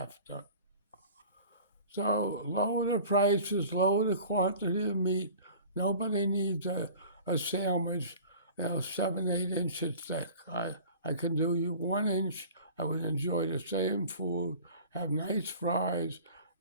to. So lower the prices, lower the quantity of meat. Nobody needs a sandwich, 7, 8 inches thick. I can do you 1 inch. I would enjoy the same food, have nice fries,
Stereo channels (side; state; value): both; inverted; correlation -0.43